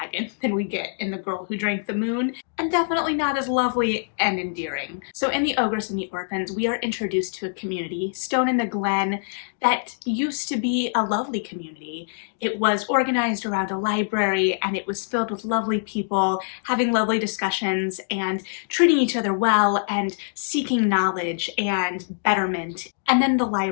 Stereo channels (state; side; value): silent; right; digital silence